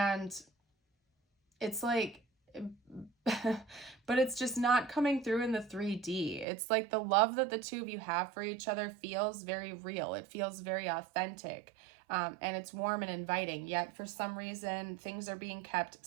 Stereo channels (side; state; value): left; drops out; at 6.5 s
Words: it's like, but it's just not coming through in the 3D. It's like the love that the two of you have for each other feels very real. It feels very authentic, and it's warm and inviting, yet for some reason, things are being kept